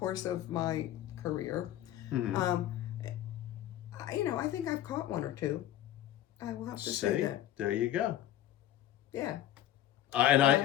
of my career, you know, I think I've caught one or two. I will have to say that. There you go. Yeah. And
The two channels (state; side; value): quieter; right; 12.4 dB